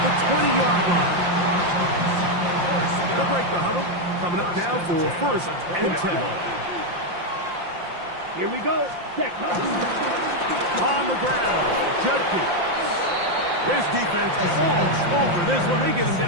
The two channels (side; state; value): left; late; 5.7 ms